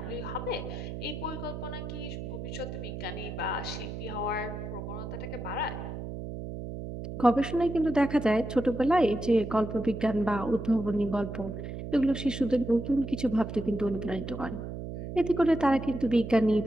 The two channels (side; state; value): right; noise; hum, 7 dB below the sound